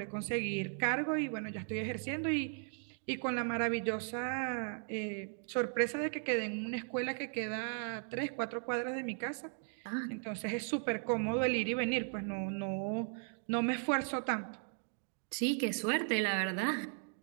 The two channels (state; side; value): silent; left; 53 dB below the other